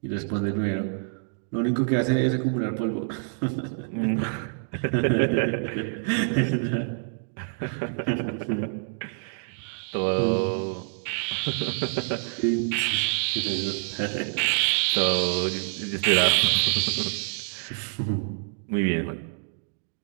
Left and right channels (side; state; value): left; silent; 60 dB below the other